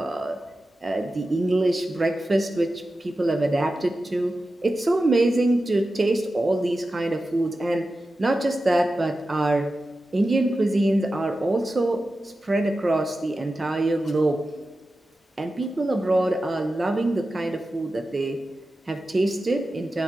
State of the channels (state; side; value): normal; both; correlation 0.93